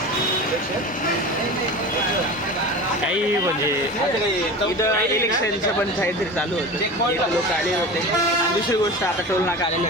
काही म्हणजे इथं इलेक्शनचं पण काहीतरी चालू होतं. इथं लोक आले होते. आणि दुसरी गोष्ट आता टोल नाका आलेले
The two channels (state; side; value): normal; both; correlation 0.32